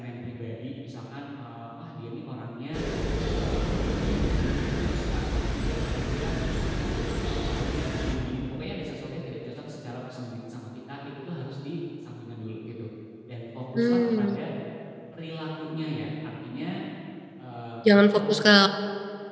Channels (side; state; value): both; identical; correlation 1.00